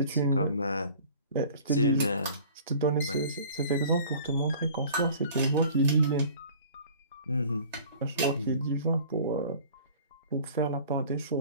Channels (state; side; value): inverted; both; correlation -0.47